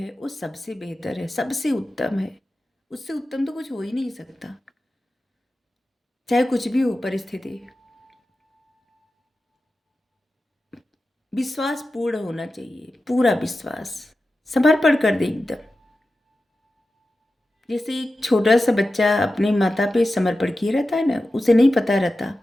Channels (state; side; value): normal; both; correlation 0.93